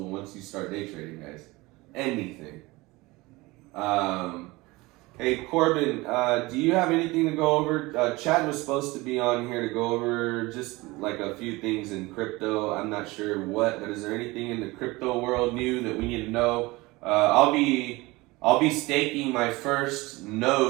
once you start day trading, guys. Anything. Hey, Corbin, do you have anything to go over? Chad was supposed to be on here to go over just like a few things in crypto. I'm not sure what, but is there anything in the crypto world new that we need to know? I'll be staking my first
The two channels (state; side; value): quieter; left; 22.0 dB